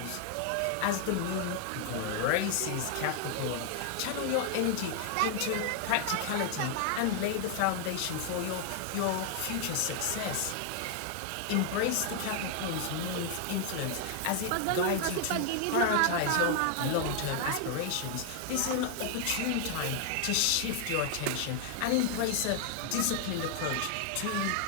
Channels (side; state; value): both; different; correlation 0.00